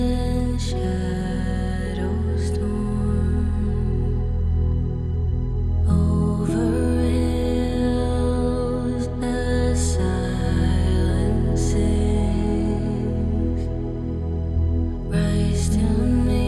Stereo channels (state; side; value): identical; both; correlation 1.00